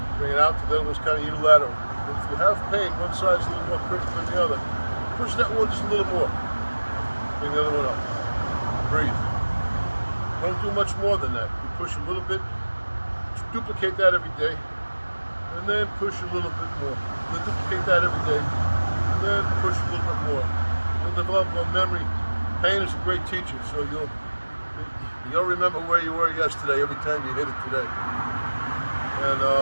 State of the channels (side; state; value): both; inverted; correlation -1.00